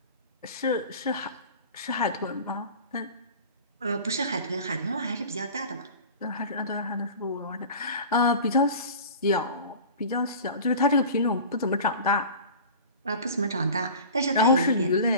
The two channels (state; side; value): inverted; both; correlation -0.38